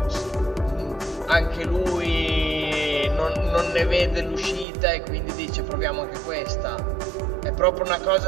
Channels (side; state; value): left; drops out; at 4.7 s